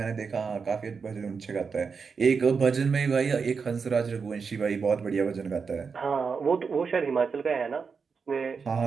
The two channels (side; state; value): left; quieter; 5.5 dB